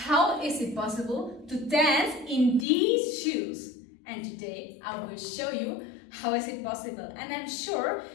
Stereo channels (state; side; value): drops out; right; at 2.7 s